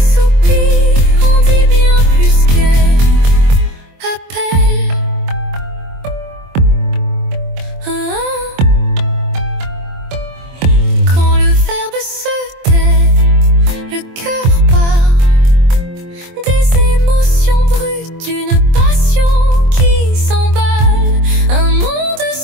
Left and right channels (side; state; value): left; late; 23 ms